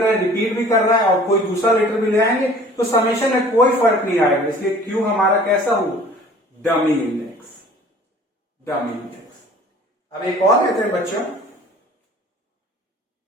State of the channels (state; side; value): normal; both; correlation 0.49